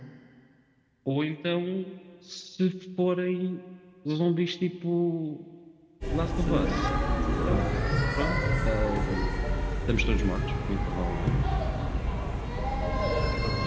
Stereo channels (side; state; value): both; identical; correlation 1.00